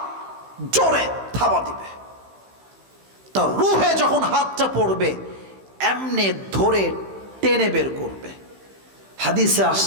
জোরে থাবা দিবে। তার রূহে যখন হাতটা পড়বে, এমনি ধরে টেনে বের করবে। হাদিসে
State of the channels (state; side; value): late; left; 15 ms